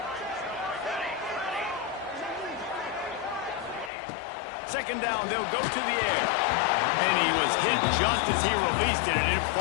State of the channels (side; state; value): right; drops out; at 3.9 s